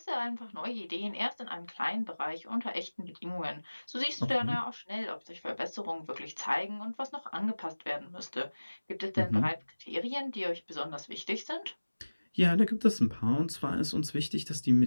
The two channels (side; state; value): both; inverted; correlation -1.00